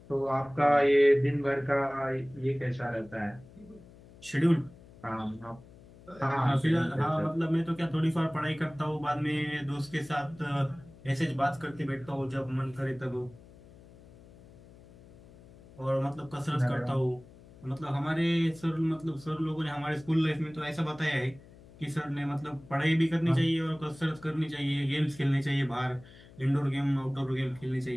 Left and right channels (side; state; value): left; noise; hum, 22 dB below the sound